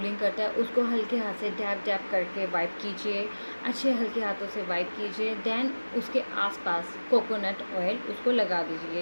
करता है उसको हल्के हाथ से डैप डैप करके वाइप कीजिए, अच्छे हल्के हाथों से वाइप कीजिए। देन उसके आसपास कोकोनट ऑयल उसको लगा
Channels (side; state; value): both; inverted; correlation -1.00